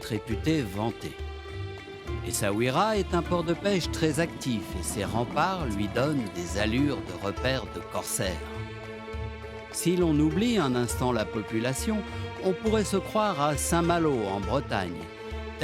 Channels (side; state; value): both; identical; correlation 1.00